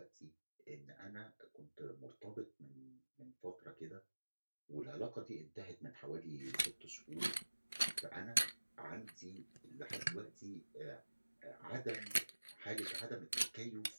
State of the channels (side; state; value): both; inverted; correlation -1.00